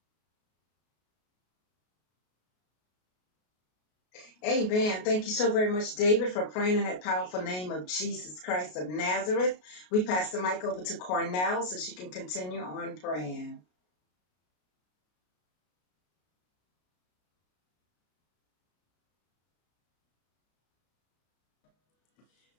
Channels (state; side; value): late; right; 33 ms